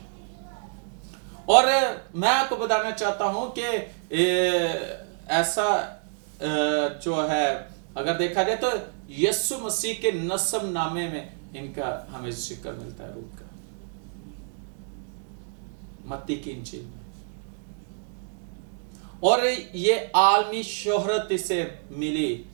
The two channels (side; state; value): left; silent; 60 dB below the other